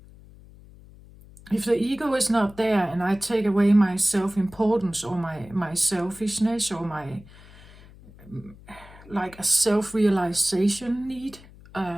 If the ego is not there and I take away my self-importance or my selfishness or my like a self-realization need,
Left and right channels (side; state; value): left; noise; hum, 22 dB below the sound